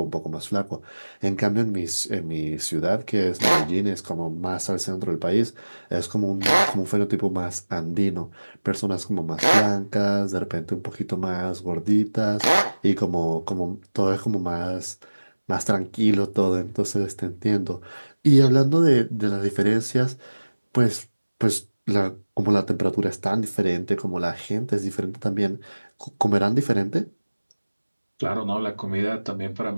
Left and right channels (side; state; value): both; inverted; correlation -1.00